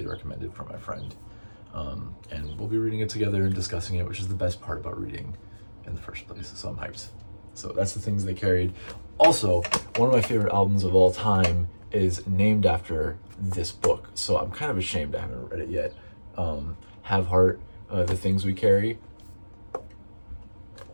recommended from my friend. And we'll be reading it together and discussing it, which is the best part about reading in the first place. So I'm hyped. So that's The Things They Carried. Also, one of my favorite albums of all time is named after this book. So I'm kind of ashamed I haven't read it yet. Have Heart, The Things We Carry.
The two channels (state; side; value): inverted; both; correlation -1.00